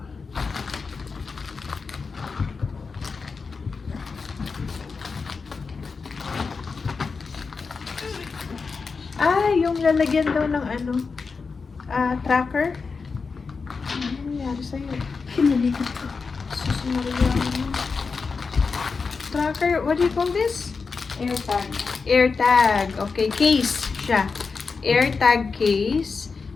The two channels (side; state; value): right; quieter; 4.8 dB